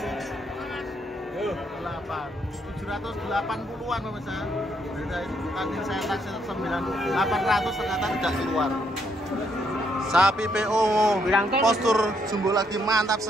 pemirsa. Tadi saya taksi 800 ternyata tidak keluar. Sapi PO postur jumbo lagi mantap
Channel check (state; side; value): normal; both; correlation 0.73